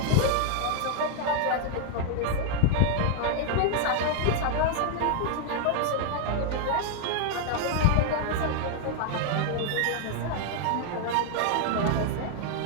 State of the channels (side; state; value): both; different; correlation 0.00